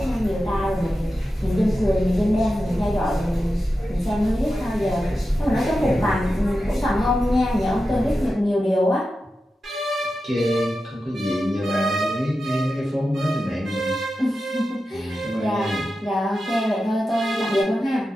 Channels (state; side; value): normal; both; correlation 0.91